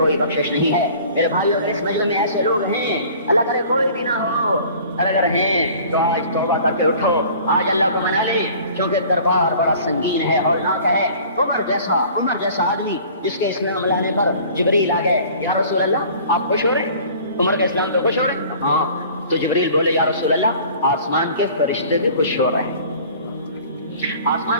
بخشش نہیں ہے۔ میرے بھائیوں اس مجلس میں ایسے لوگ ہیں اللہ کرے کوئی بھی نہ ہو، اگر ہیں تو آج توبہ کر کے اٹھو، آج اللہ کو منا لے، کیونکہ دربار بڑا سنگین ہے ہولناک ہے۔ عمر جیسا آدمی جس کے اسلام لانے پر جبریل آ گئے، یا رسول اللہ آپ خوش ہو رہے؟ عمر کے اسلام پہ خوش ہو رہے؟ ہاں۔ تو جبریل بولے یا رسول اللہ آسمان کے فرشتے بھی خوش ہو رہے ہیں، آسمان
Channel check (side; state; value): both; inverted; correlation -0.48